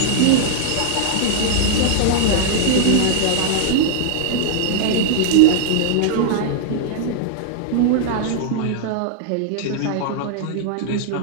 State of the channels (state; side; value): different; both; correlation -0.01